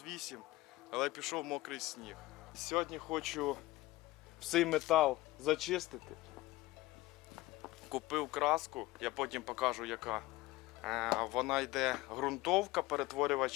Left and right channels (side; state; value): right; quieter; 18.7 dB